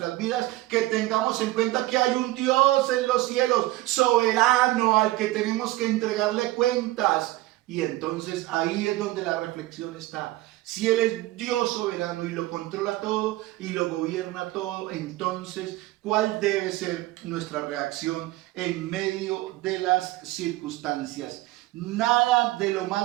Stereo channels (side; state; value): left; quieter; 17.7 dB